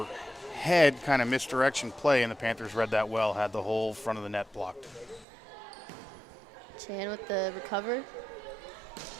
head, kind of misdirection play, and the Panthers read that well, had the whole front of the net blocked. Chan with the recover.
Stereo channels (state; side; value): drops out; left; at 5.2 s